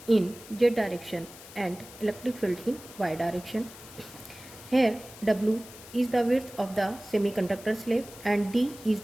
in Z direction and electric field in Y direction. Here W is the width of the semiconductor slab and D is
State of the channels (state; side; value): noise; left; hiss, 17 dB below the sound